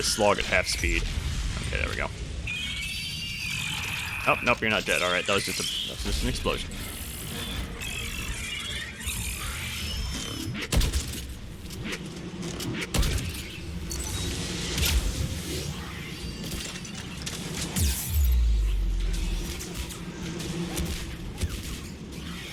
slog at half speed. Okay, there we go. Oh, nope, you're not dead. Alright, that was just an explosion.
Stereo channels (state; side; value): identical; both; correlation 1.00